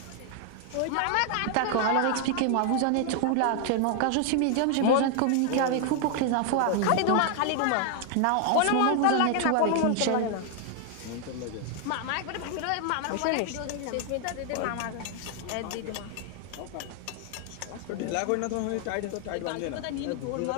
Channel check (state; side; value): different; both; correlation 0.00